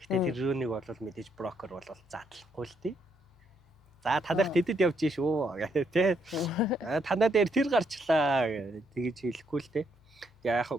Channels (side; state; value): left; noise; hum, 30 dB below the sound